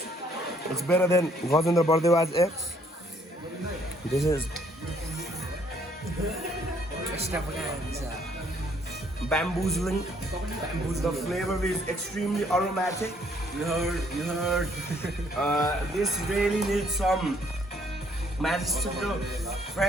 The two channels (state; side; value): normal; both; correlation 0.66